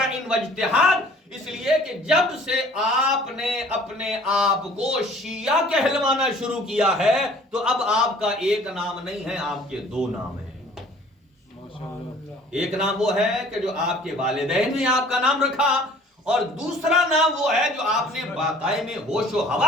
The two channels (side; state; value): both; normal; correlation 0.52